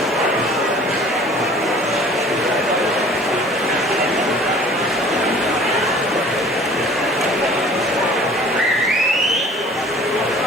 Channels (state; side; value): normal; both; correlation 0.49